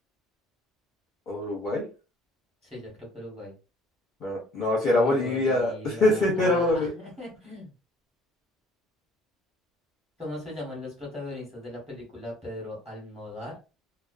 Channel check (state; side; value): normal; both; correlation 0.58